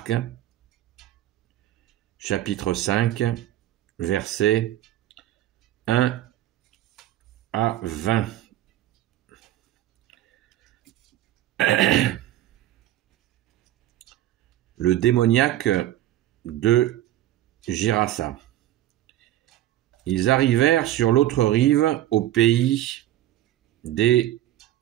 chapitre 5, versets 1 à 20. Le démoniaque de Gérasa. Ils arrivèrent sur l'autre rive, au pays des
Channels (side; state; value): left; quieter; 13.6 dB